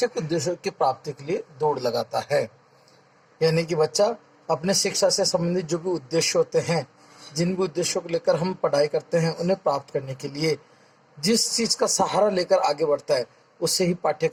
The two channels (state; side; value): identical; both; correlation 1.00